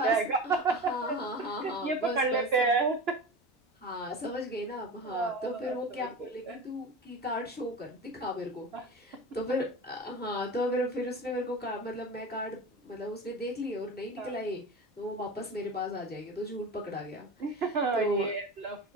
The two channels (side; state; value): both; normal; correlation 0.30